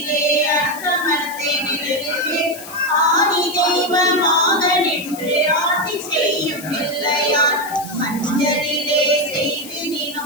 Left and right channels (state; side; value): noise; left; hiss, 14 dB below the sound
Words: அரசமரத்தை நிழலிலே ஆதி தெய்வமாக நின்று ஆட்சி செய்யும் பிள்ளையார். மஞ்சளிலே